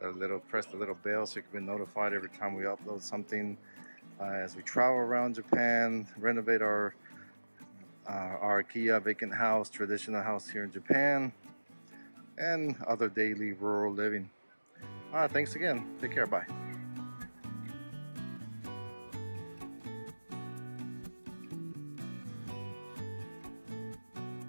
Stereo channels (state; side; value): inverted; both; correlation -1.00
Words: press the little bell so you can be notified every time we upload something. As we travel around Japan, renovate our Akiya vacant house, traditional house here in Japan, and other daily rural living. Thanks again. Take care. Bye.